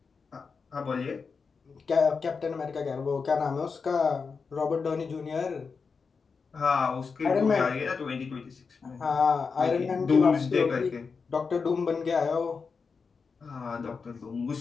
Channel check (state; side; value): quieter; right; 5.2 dB